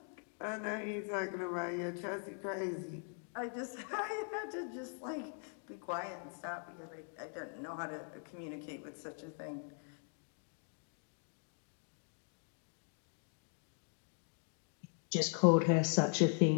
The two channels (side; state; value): right; silent; 51 dB below the other